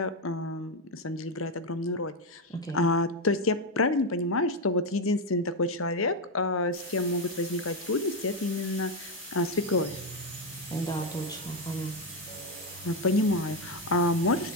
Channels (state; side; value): normal; both; correlation 0.07